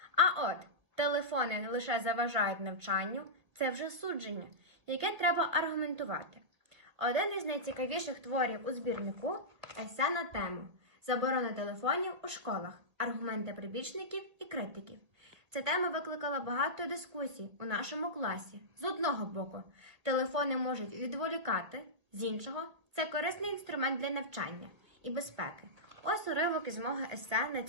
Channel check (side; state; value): left; late; 1.5 ms